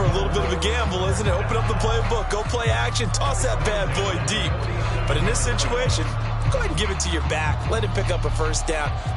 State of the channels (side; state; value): both; identical; correlation 1.00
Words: a little bit of a gamble, isn't it? Open up the playbook, go play action, toss that bad boy deep. But in this situation, go ahead and give it to your back. Let him pick up a first down.